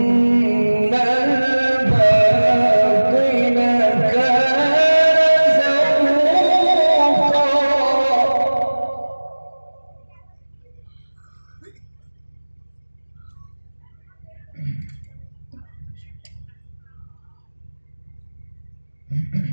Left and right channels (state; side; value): inverted; both; correlation -1.00